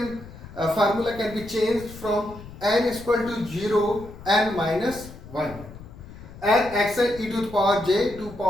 can be changed from n is equal to 0, n minus 1, and xn e to the power j 2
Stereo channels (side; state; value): left; noise; rumble, 16 dB below the sound